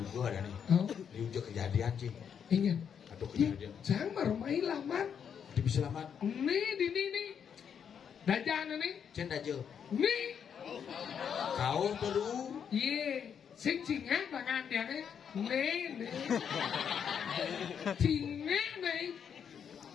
ada nih. Oh. Ini udah kejadian sih. Ingin. Atau kejadian. Jangan baru main lamar. Dia bisa selamat. Nih di nih. Dajan nih. Cenda aja. Nih. Kau perlu. Iya. Sing cingat tangan dia nih. Nih. Cingat nih.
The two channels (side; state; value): right; quieter; 7.7 dB